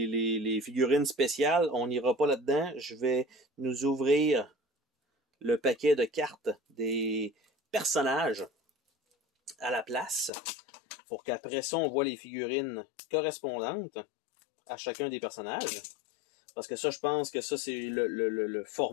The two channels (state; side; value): drops out; right; at 10.3 s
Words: figurines spéciales. On n'ira pas là-dedans. Je vais nous ouvrir le paquet de cartes des personnages à la place pour qu'après ça, on voit les figurines correspondantes à chacun des personnages. Parce que ça, je pense que ça, c'est le